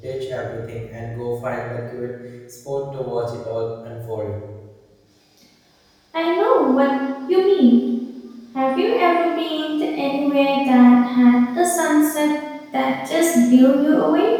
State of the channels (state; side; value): identical; both; correlation 1.00